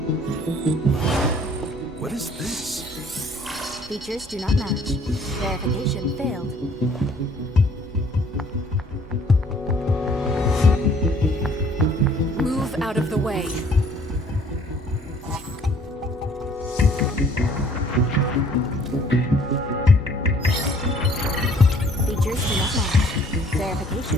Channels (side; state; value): both; normal; correlation 0.58